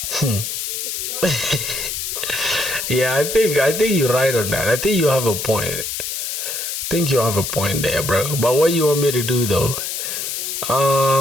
Yeah, I think you're right on that. I think you have a point. think you have a point there, bro. But what you want me to do though?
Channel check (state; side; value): noise; left; hiss, 4 dB below the sound